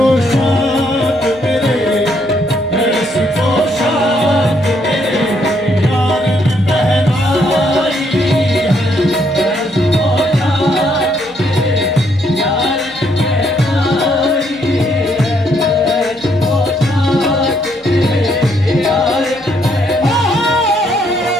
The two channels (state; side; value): normal; both; correlation 0.72